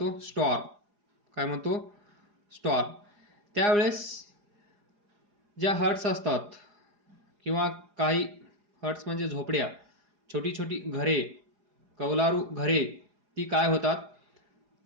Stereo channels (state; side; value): late; left; 4.8 ms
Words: स्टॉर्म. काय म्हणतो, स्टॉर्म. त्यावेळेस ज्या हट्स असतात किंवा काही हट्स म्हणजे झोपड्या, छोटी छोटी घरे, कौलारू घरे, ती काय होतात,